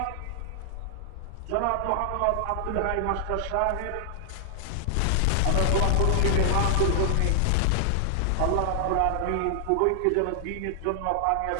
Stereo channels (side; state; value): both; different; correlation 0.00